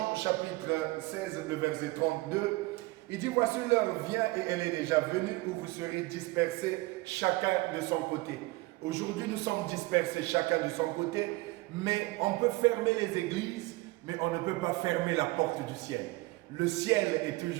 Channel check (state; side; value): quieter; left; 21.5 dB